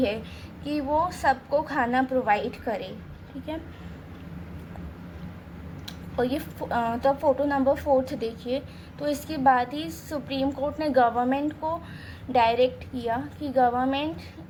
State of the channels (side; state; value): both; identical; correlation 1.00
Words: कि वो सबको खाना प्रोवाइड करे, ठीक है। और ये तो अब फ़ोटो नंबर 4 देखिए। तो इसके बाद ही सुप्रीम कोर्ट ने गवर्नमेंट को डायरेक्ट किया कि